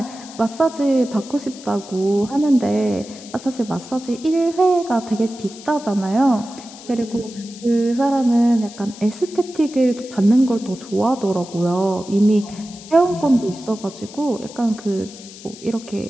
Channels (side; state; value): left; noise; hiss, 17 dB below the sound